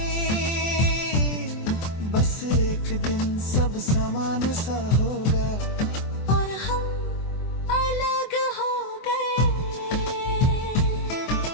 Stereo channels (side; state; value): right; late; 24 ms